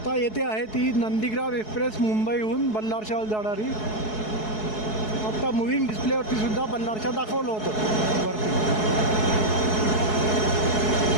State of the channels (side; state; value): right; late; 4.7 ms